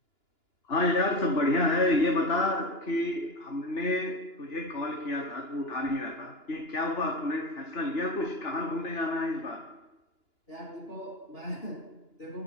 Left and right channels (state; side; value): late; right; 2.9 ms